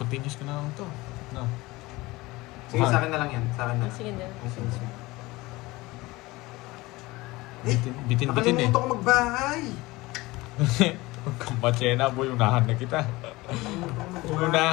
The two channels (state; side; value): quieter; right; 20.8 dB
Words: ko na lang to. No. Sige, sa akin na lang yan. Sa akin na. Sige din. Bitin, eh. Nakalimutan ko magbahay. Huwag kang matsena, boy. Unahan na kita.